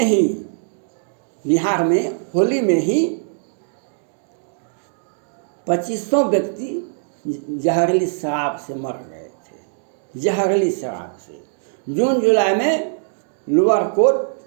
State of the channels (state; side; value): silent; left; digital silence